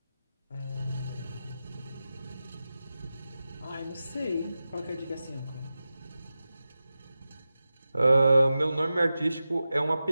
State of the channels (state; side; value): inverted; both; correlation -0.94